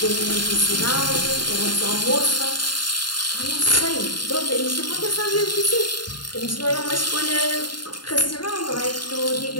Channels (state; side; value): late; right; 0.71 ms